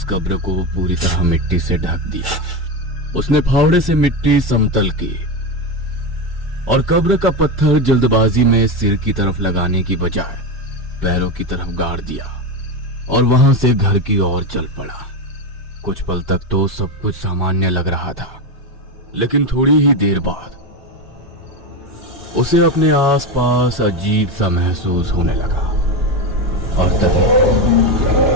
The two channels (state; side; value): normal; both; correlation 0.15